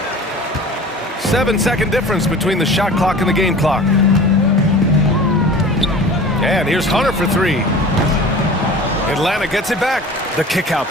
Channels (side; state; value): both; normal; correlation 0.40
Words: 7-second difference between the shot clock and the game clock. And here's Hunter for three. Atlanta gets it back. The kick out